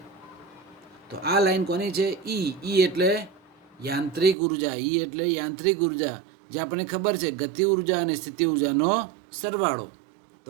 તો આ લાઈન કોની છે? ઈ એટલે યાંત્રિક ઉર્જા. ઈ એટલે યાંત્રિક ઉર્જા, જે આપણને ખબર છે ગતિ ઉર્જા અને સ્થિતિ ઉર્જાનો સરવાળો.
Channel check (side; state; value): left; drops out; at 4.4 s